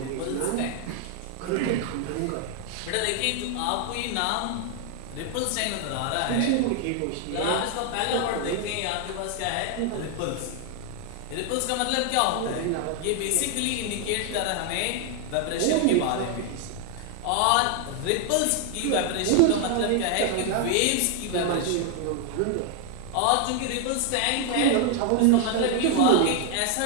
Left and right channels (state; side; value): different; both; correlation 0.00